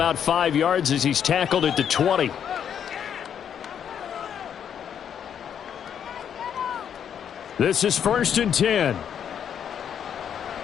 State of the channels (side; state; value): right; quieter; 8.6 dB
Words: 5 yards as he's tackled at the 20. This is 1st and 10.